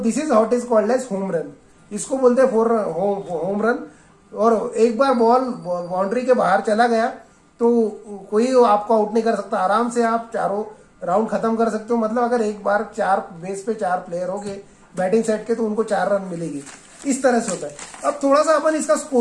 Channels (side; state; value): both; identical; correlation 1.00